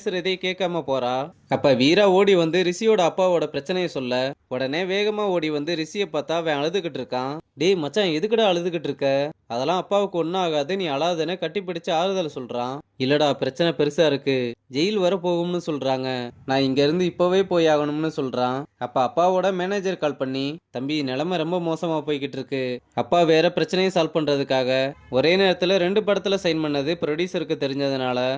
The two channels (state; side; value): identical; both; correlation 1.00